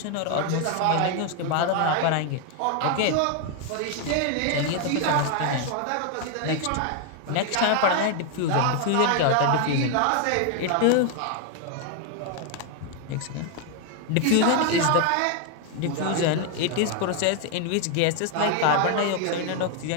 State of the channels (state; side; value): different; both; correlation 0.01